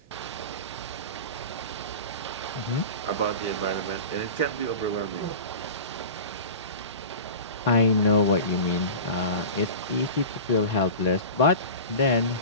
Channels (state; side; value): inverted; both; correlation -0.33